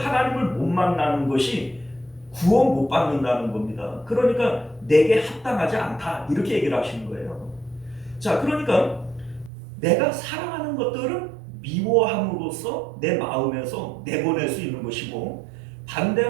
못 만나는 것이 구원 못 받는다는 겁니다. 그러니까 내게 합당하지 않다, 이렇게 얘기를 하시는 거예요. 자, 그러니까 내가 사랑하는 것들은 미워함으로써 내 마음에서 내보낼 수 있는 것이고,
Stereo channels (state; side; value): drops out; left; at 9.5 s